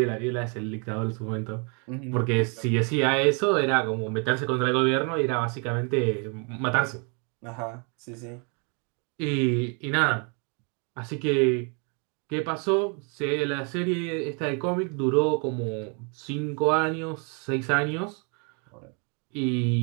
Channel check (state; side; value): quieter; left; 36.2 dB